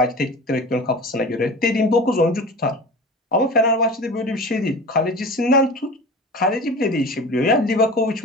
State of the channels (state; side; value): normal; both; correlation 0.35